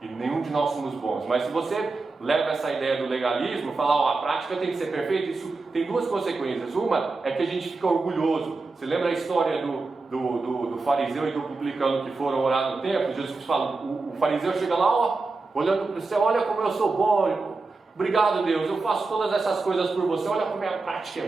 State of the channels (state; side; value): quieter; left; 3.8 dB